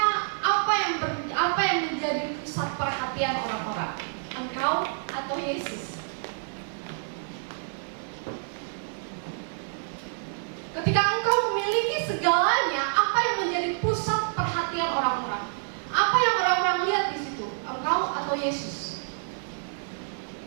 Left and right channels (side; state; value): left; silent; 59 dB below the other